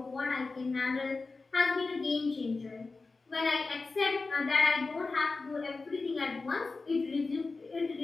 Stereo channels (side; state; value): right; quieter; 3.8 dB